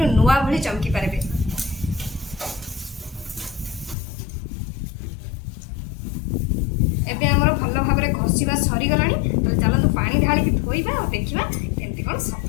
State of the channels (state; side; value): drops out; right; at 4.0 s